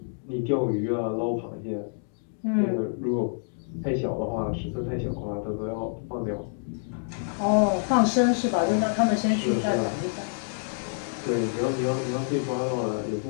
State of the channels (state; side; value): silent; right; digital silence